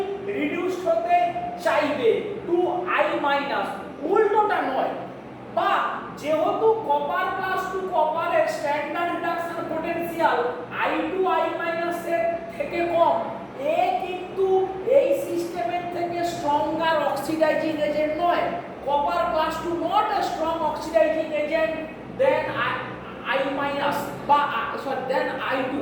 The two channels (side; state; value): both; identical; correlation 1.00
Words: রিডিউস হতে চাইবে টু I মাইনাস, উল্টোটা নয়। বা যেহেতু কপার প্লাস টু কপারের standard reduction potential I2 I minus এর থেকে কম, এ কিন্তু এই সিস্টেমের থেকে স্ট্রঙ্গার অক্সিডাইজিং এজেন্ট নয়। Copper plus two not a strong oxidizing agent than I minus বা দেন I2।